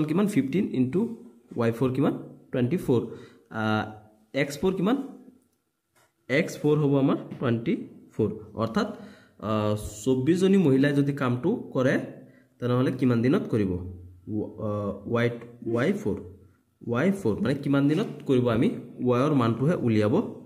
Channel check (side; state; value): both; identical; correlation 1.00